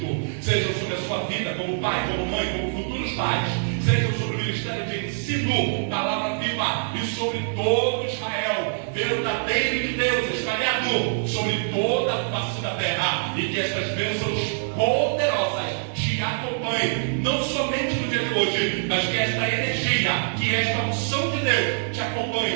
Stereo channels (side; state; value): left; silent; digital silence